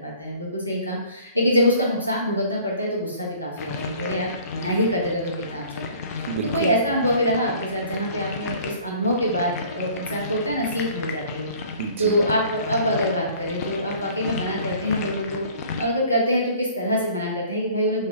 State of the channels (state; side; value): inverted; both; correlation -0.52